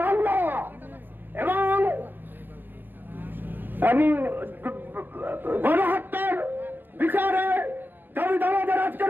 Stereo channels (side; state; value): left; late; 0.093 ms